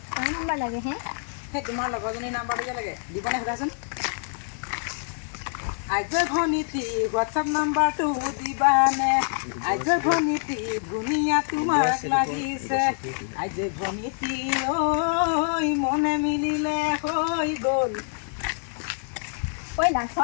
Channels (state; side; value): silent; right; 61 dB below the other